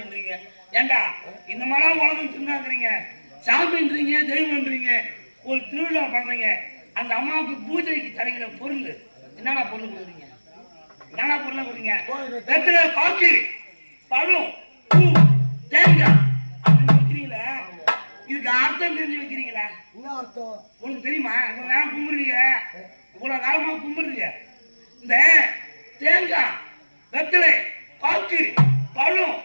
ஏண்டா இந்த மாதிரி உலகம் சொன்னாங்கிறீங்க, சாமின்றீங்க, தெய்வம்ன்றீங்க. ஒரு திருவிழா பண்றீங்க, அந்த அம்மாவுக்கு பூஜைக்கு தரங்கிற பொருள் என்னடா பொருள் கொடுக்குறீங்க? என்னடா பொருளை கொடுங்க? வெத்தலை, பாக்கு, பழம், பூ, தேங்காய் அப்படின்னு வைக்கிறீங்களா? இதுக்கு அர்த்தம் தெரிஞ்சு வைக்கிறீங்களா? உங்களுக்கு தெரியுமா? இவ்வளவு நேரம் கும்பிடுறீங்க, இவ்வளவு காலமா கும்பிடுறீங்க. இந்த தேங்காய், வெத்தலை, பாக்கு, பழம்,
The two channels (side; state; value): both; inverted; correlation -1.00